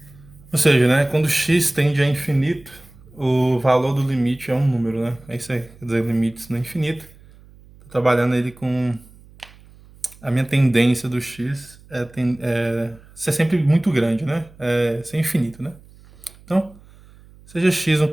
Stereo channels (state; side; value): noise; right; hum, 24 dB below the sound